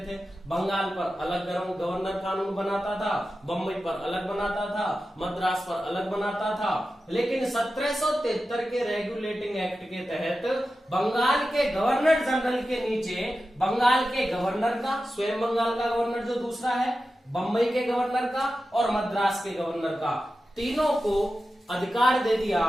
बंगाल पर अलग गवर्नर कानून बनाता था, बम्बई पर अलग बनाता था, मद्रास पर अलग बनाता था। लेकिन 1773 के रेगुलेटिंग एक्ट के तहत बंगाल के गवर्नर जनरल के नीचे बंगाल के गवर्नर का, स्वयं बंगाल का गवर्नर जो दूसरा है, बम्बई के गवर्नर का और मद्रास के गवर्नर का, तीनों को अधिकार दे दिया।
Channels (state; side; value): normal; both; correlation 0.93